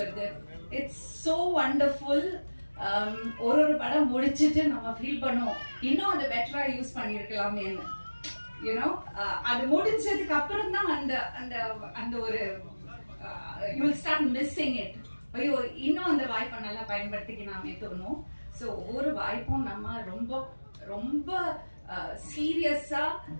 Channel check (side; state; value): both; inverted; correlation -1.00